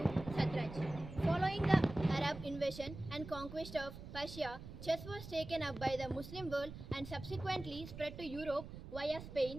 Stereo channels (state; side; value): noise; right; rumble, 12 dB below the sound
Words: Satraj. Following the Arab invasion and conquest of Persia, chess was taken up by the Muslim world and subsequently spread to Europe via